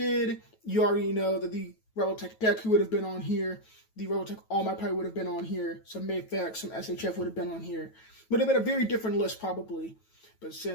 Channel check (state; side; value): late; right; 9.2 ms